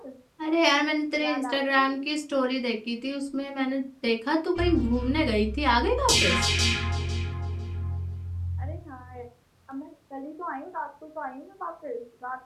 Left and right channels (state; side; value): identical; both; correlation 1.00